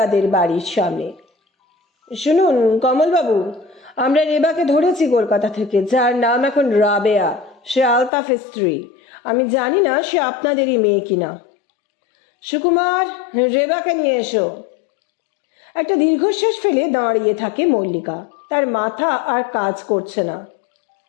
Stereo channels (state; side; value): drops out; right; at 8.1 s